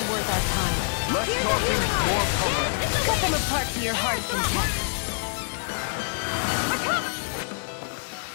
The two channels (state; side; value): silent; right; 59 dB below the other